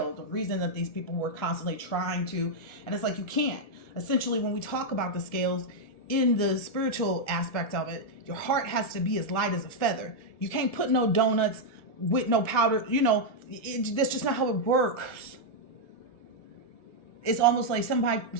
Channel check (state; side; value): late; right; 1.7 ms